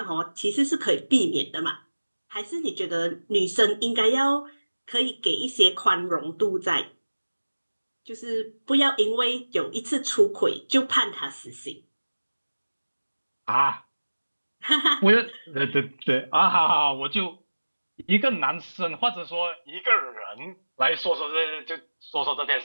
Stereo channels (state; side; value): inverted; both; correlation -1.00